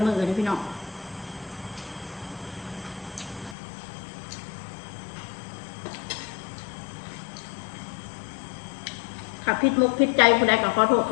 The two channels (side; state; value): right; drops out; at 3.6 s